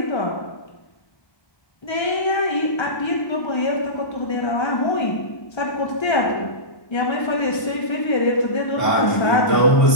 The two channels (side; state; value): right; late; 1.3 ms